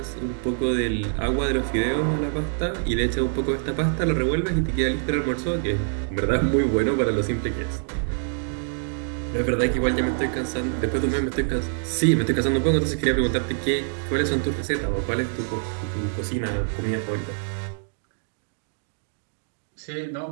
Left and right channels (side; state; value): left; silent; digital silence